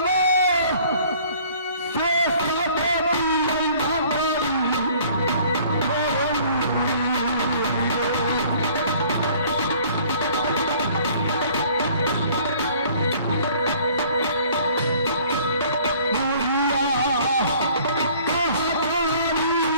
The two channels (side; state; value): both; inverted; correlation -0.54